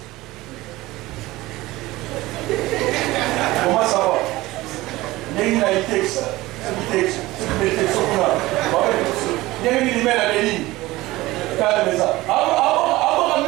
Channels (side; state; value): left; quieter; 18.8 dB